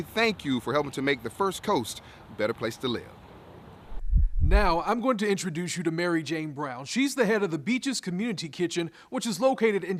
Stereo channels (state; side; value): identical; both; correlation 1.00